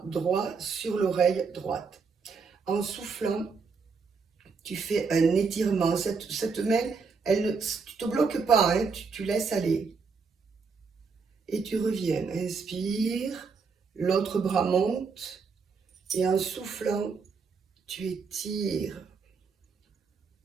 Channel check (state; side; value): quieter; left; 5.1 dB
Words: droit sur l'oreille droite. En soufflant, tu fais un étirement. Cette main, tu ne te bloques pas, hein, tu laisses aller. Et tu reviens. Inspire, l'autre bras monte. Et en soufflant, tu étires.